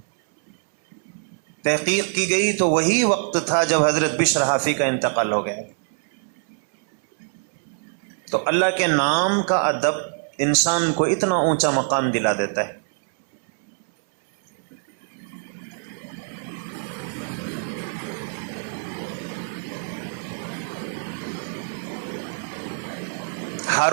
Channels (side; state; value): left; silent; 63 dB below the other